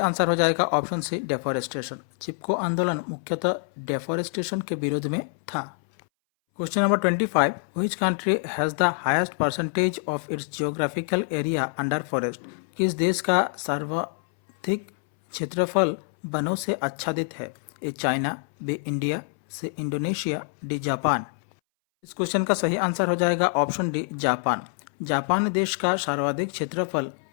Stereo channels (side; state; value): right; silent; 61 dB below the other